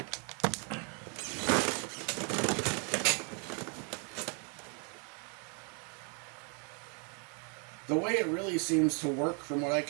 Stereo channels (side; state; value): left; quieter; 38.2 dB